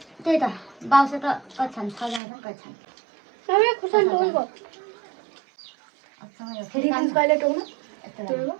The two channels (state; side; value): drops out; left; at 2.2 s